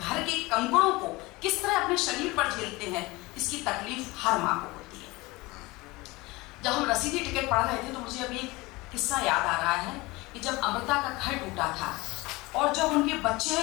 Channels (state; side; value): quieter; right; 22.3 dB